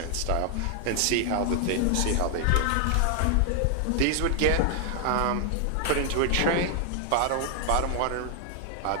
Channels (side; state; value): both; different; correlation 0.00